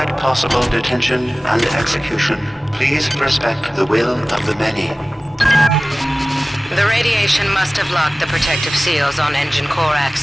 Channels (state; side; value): normal; both; correlation 0.98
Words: possible detention and execution, please respect the will of the many. The radiation must have locked the protective seals on engine core